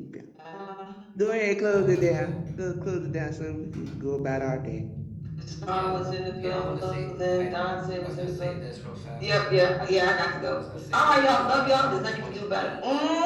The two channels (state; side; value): identical; both; correlation 1.00